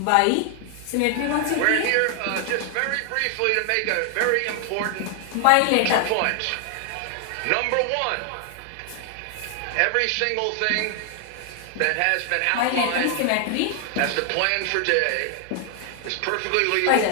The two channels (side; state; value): both; different; correlation 0.00